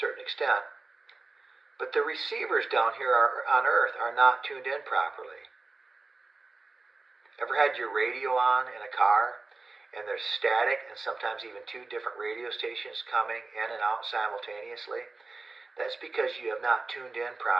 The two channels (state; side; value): quieter; left; 3.6 dB